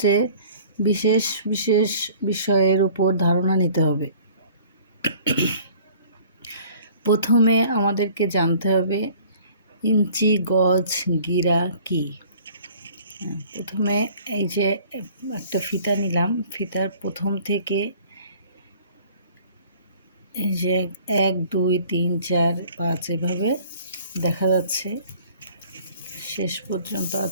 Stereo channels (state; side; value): inverted; both; correlation -0.52